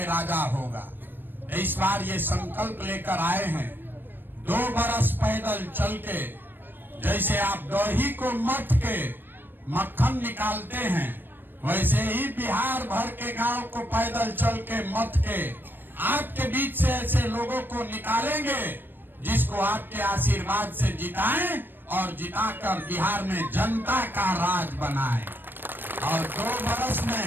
राजा होगा। इस बार ये संकल्प लेकर आए हैं, 2 बरस पैदल चल के, जैसे आप दही को मथ के मक्खन निकालते हैं, वैसे ही बिहार भर के गांव को पैदल चल के मथ के आपके बीच से ऐसे लोगों को निकालेंगे जिसको आपके आशीर्वाद से जिताएं और जिताकर बिहार में जनता का राज बनाएं। और 2 बरस में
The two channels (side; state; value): left; late; 0.095 ms